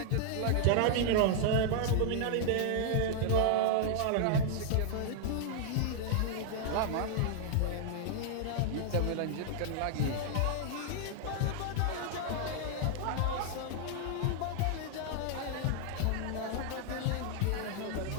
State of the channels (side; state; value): both; different; correlation -0.01